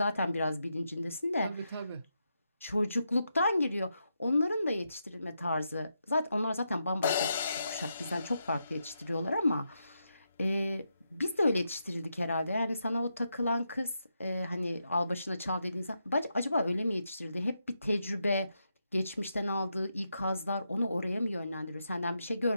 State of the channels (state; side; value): inverted; both; correlation -0.84